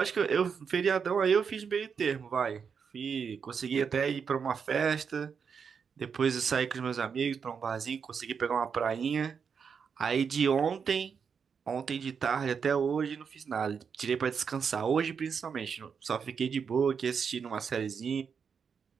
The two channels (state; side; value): quieter; left; 6.4 dB